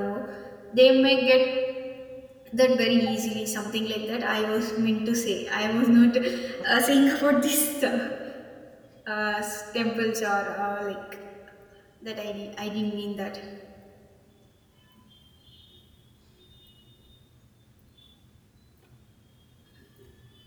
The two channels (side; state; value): both; identical; correlation 1.00